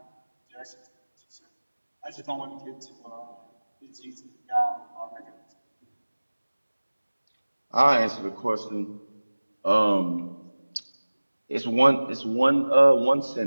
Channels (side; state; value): both; inverted; correlation -1.00